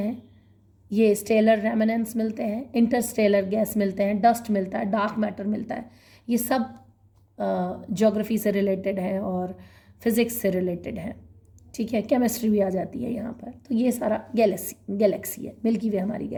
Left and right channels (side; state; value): both; identical; correlation 1.00